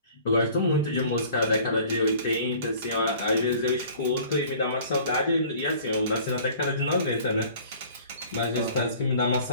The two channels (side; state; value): both; inverted; correlation -0.50